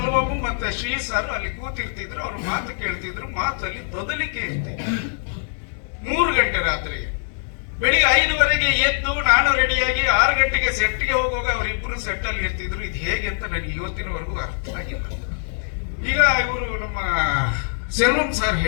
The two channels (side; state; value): right; silent; 64 dB below the other